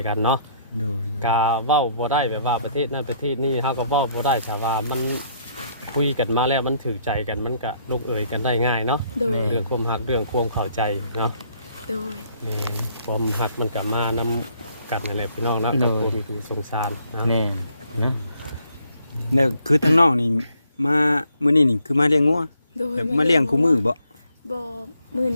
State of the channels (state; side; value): inverted; both; correlation -0.68